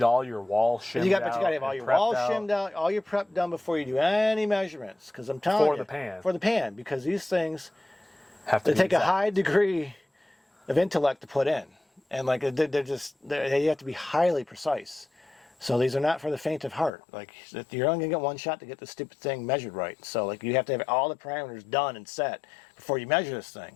all your walls shimmed out. But you got to have all your walls shimmed out, all your prep done before you do any measurements. Because I'm telling you, for the pan, because these things they take a high degree of intellect to put in, and like they have to be highly precise. So these are not for the faint of heart. Like, you're only going to get one shot to get the stupid thing measured right. So like, you have to have all the parameters done and set before you measure this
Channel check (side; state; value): right; drops out; at 16.9 s